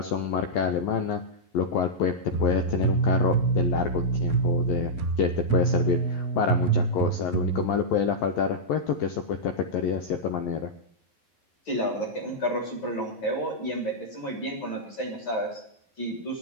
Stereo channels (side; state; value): right; late; 11 ms